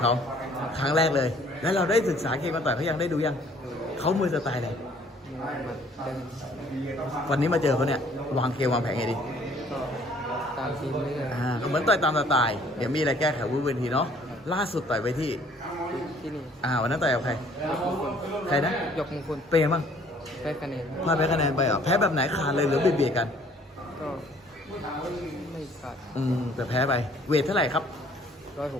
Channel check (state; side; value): normal; both; correlation 0.58